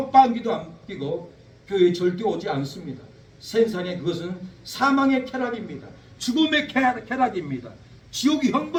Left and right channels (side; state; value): both; identical; correlation 1.00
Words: 안 끼고 교회에 절대 오지 않습니다. 세상에 그것은 사망의 쾌락입니다. 죽음의 쾌락입니다. 지옥이